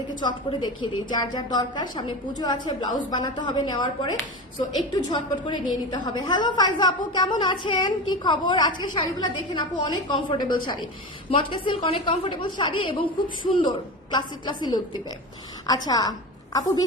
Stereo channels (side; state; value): both; normal; correlation 0.25